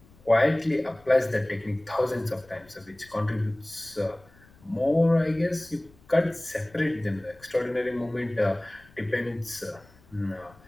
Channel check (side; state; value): left; noise; rumble, 27 dB below the sound